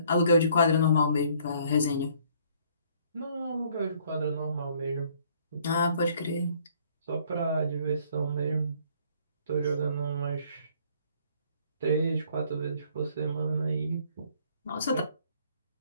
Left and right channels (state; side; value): inverted; both; correlation -0.61